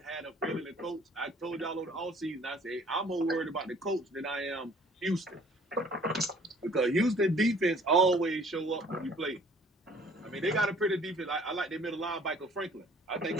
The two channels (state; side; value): normal; both; correlation 0.55